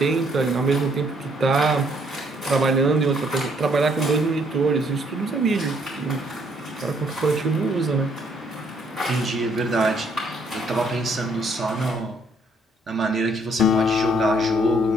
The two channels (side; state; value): both; normal; correlation 0.67